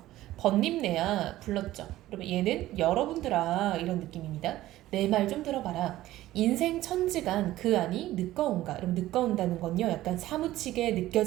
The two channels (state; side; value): quieter; left; 15.3 dB